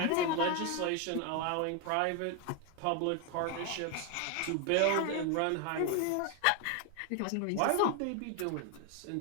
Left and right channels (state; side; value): different; both; correlation 0.01